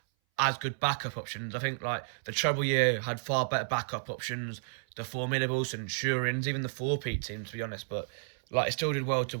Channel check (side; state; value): left; silent; 57 dB below the other